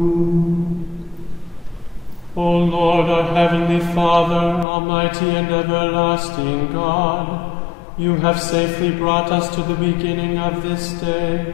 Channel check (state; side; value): drops out; right; at 4.7 s